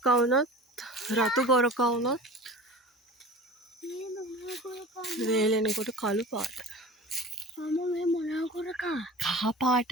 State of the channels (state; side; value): normal; both; correlation 0.38